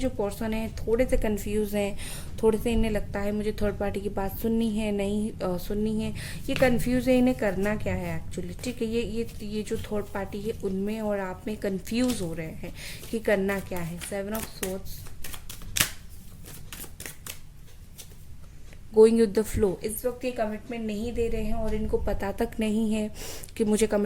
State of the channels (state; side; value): identical; both; correlation 1.00